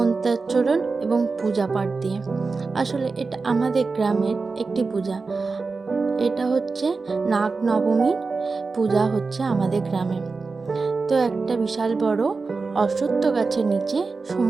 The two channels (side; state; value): left; quieter; 4.2 dB